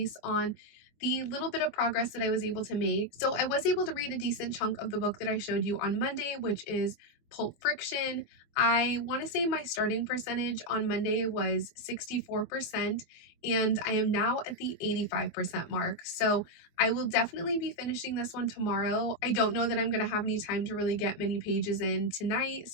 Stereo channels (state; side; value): late; right; 24 ms